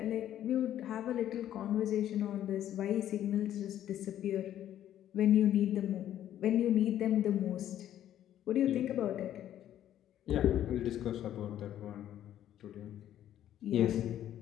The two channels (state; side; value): quieter; right; 11.5 dB